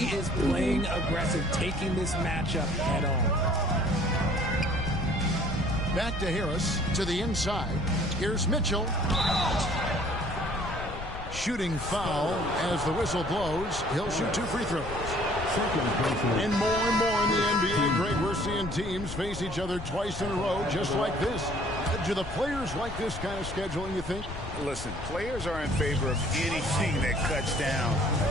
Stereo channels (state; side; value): noise; left; rumble, 10 dB below the sound